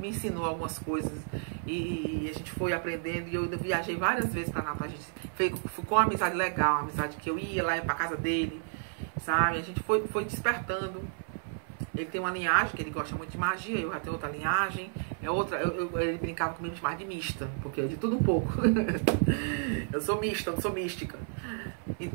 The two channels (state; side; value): silent; left; 57 dB below the other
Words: ensinou algumas coisas e a gente foi aprendendo. E eu viajei várias vezes para Natal. A gente ficou uma amizade legal, uma amizade que eu ia lá para casa dele, sabe? A gente foi despertando. Ele tem uma linhagem que ele gosta muito de magia, eu já tenho outra linhagem. Ele brincava comigo de chamar de mista, porque é de tudo um pouco. Eu sou mista, não sou mística.